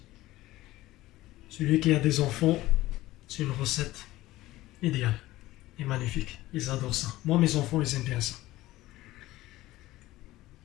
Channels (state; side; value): quieter; right; 17.1 dB